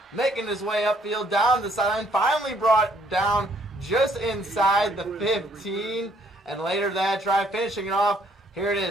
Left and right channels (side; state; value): both; normal; correlation 0.65